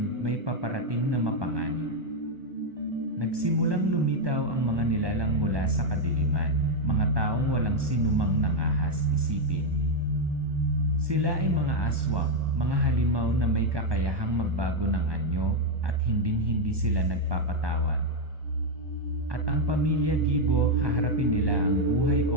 may paparating na mapanganib. Nagsimulang lumitaw ang mga nilalang mula sa kadiliman, mga taong walang sinumang nangahas isipin. Sila ay mga aswang, mga halimaw na may kakayahang magbago ng anyo at hinding-hindi sila nagpapatawad. At ang pamilya Gibo, haharapin nila ang buhay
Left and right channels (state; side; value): late; left; 1.2 ms